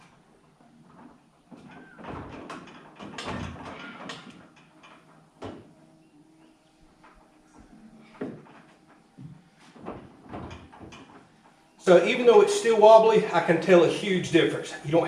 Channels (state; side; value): identical; both; correlation 1.00